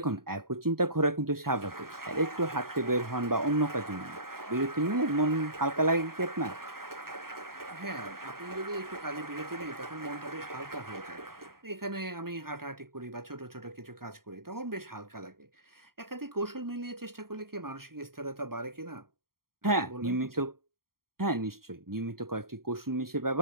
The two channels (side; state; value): left; late; 0.93 ms